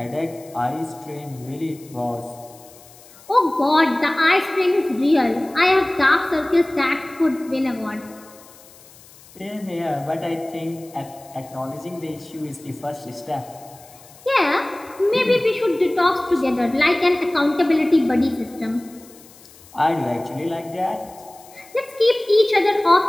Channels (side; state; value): left; noise; hiss, 23 dB below the sound